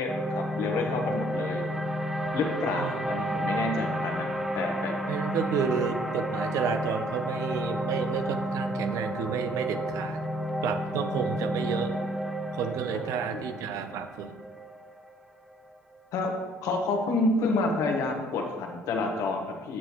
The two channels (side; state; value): both; normal; correlation 0.61